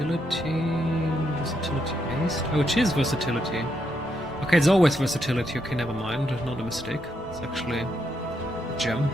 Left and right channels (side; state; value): both; normal; correlation 0.79